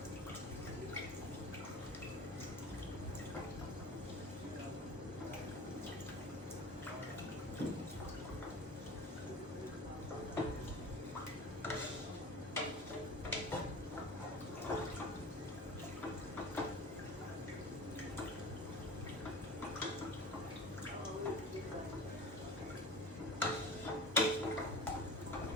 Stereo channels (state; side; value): normal; both; correlation 0.36